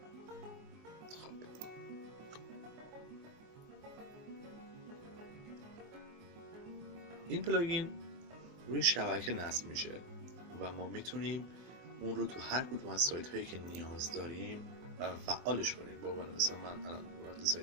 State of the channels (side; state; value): left; late; 23 ms